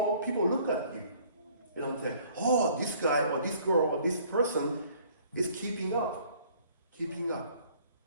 look at you, and say, oh, this guy or this girl or this person is keeping up.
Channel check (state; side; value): inverted; both; correlation -0.57